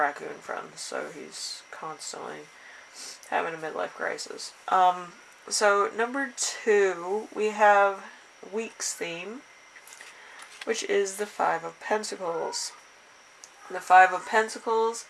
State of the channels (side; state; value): both; identical; correlation 1.00